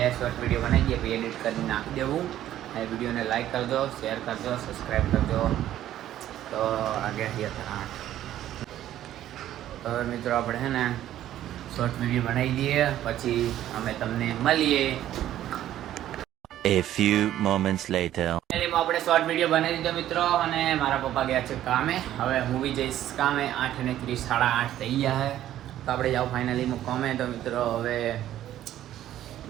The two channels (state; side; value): quieter; left; 12.5 dB